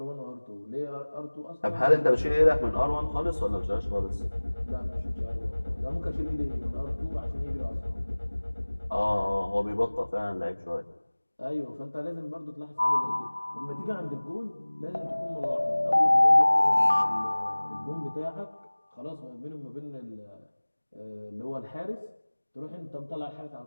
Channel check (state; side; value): inverted; both; correlation -1.00